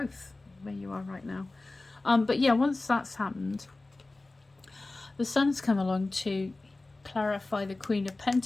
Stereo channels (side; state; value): right; quieter; 3.1 dB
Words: where you are right now. But yeah, once that's happened, the Sun's come along to clarify the Queen of